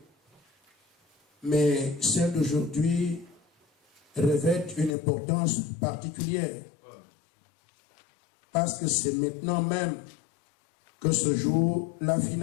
Mais celles d'aujourd'hui revêtent une importance particulière. Parce que c'est maintenant même que se joue la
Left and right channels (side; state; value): right; drops out; at 5.0 s